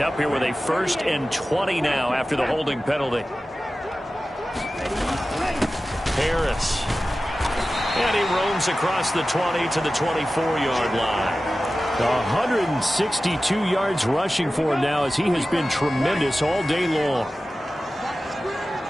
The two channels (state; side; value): normal; both; correlation 0.95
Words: here with a 1st and 20 now after the holding penalty. Harris. And he roams across the 20 to the 24-yard line. 162 yards rushing for him now as he has been tremendous all day long.